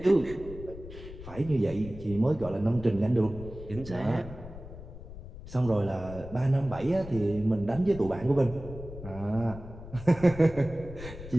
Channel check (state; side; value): noise; left; rumble, 14 dB below the sound